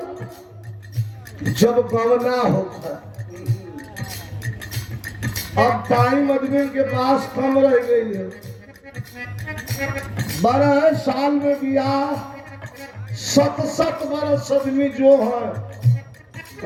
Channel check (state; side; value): identical; both; correlation 1.00